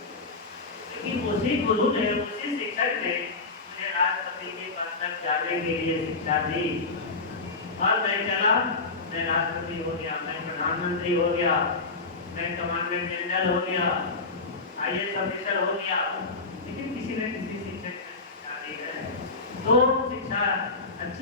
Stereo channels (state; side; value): quieter; right; 3.7 dB